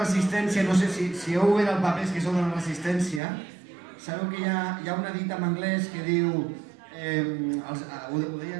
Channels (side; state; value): left; drops out; at 3.2 s